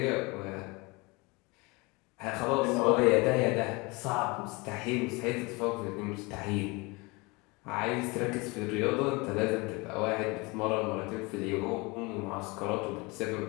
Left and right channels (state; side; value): quieter; right; 25.8 dB